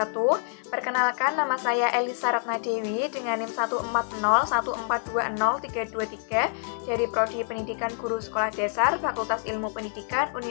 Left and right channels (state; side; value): silent; right; 60 dB below the other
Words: Perkenalkan, nama saya Elisa Ratnadewi dengan NIM 14014203223 dari Prodi Pendidikan Guru Sekolah Dasar Fakultas Ilmu Pendidikan